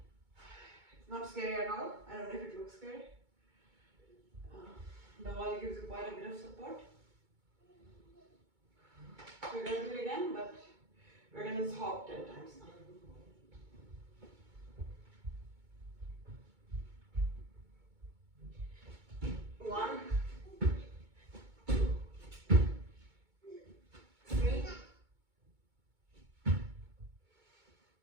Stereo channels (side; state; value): left; late; 2.2 ms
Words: It's not scary at all. I don't know if it looks scary. The wall gives you quite a bit of support. We're going to do it again, but we're going to hop 10 times now. One, 2, 3,